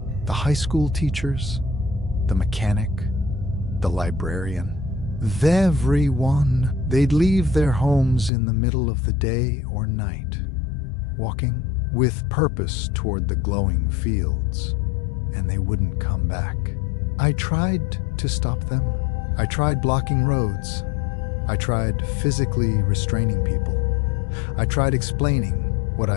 the high school teachers, the mechanic, the librarian. Everyone, they'd leave their homes in the middle of the day or night, walking with purpose toward the glowing fields, and they wouldn't come back. I tried to stop them. I tried blocking roads. I tried physically restraining people. I tried explaining what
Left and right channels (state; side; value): drops out; right; at 8.3 s